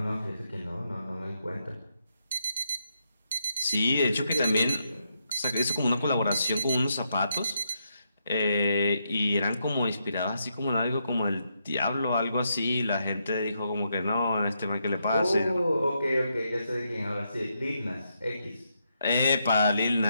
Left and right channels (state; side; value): inverted; both; correlation -0.80